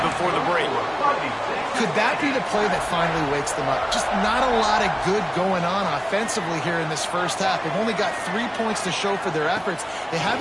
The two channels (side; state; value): both; identical; correlation 1.00